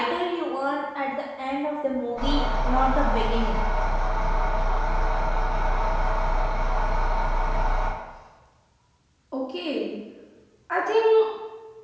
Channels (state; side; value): identical; both; correlation 1.00